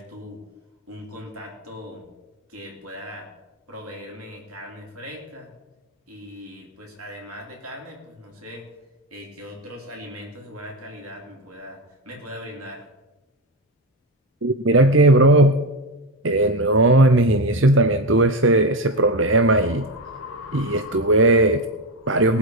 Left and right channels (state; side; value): normal; both; correlation 0.14